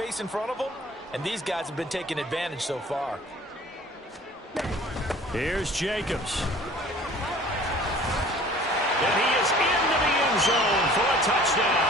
in front of them, and these guys have been taking advantage so far. Here's Jacobs. And he is into the end zone for a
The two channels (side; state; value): both; normal; correlation 0.48